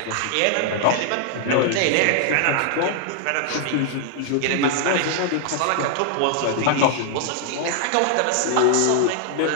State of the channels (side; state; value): both; different; correlation 0.00